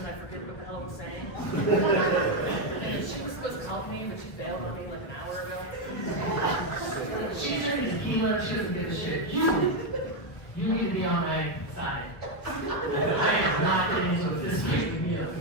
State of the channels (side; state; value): right; late; 1.4 ms